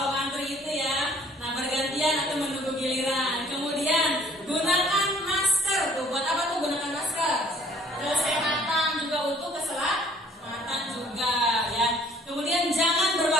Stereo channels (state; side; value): normal; both; correlation 0.58